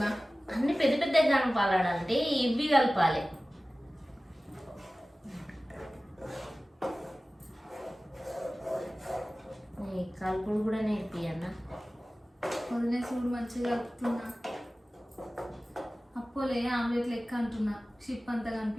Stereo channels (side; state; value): both; normal; correlation 0.97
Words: అన్ని పెద్ద పెద్ద కలపాలంటే ఇవి కలపాలి. కలుపుడు కూడా నేర్పియన్నా. వదిలేసి కూడా మంచిగా కలుపుతున్నా. అప్పోలే ఆమ్లెట్ లెక్క అంటున్నా. షిప్ అంతా